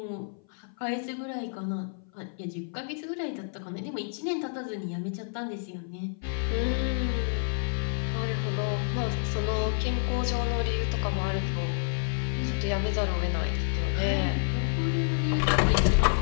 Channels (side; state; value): right; silent; 56 dB below the other